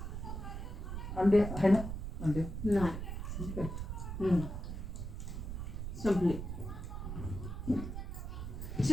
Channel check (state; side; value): noise; right; rumble, 5 dB below the sound